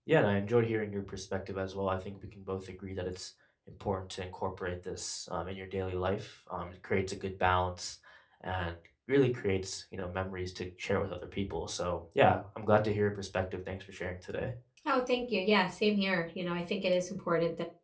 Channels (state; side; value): identical; both; correlation 1.00